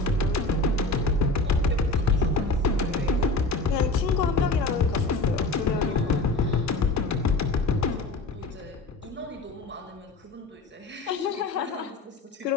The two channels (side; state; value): right; quieter; 3.1 dB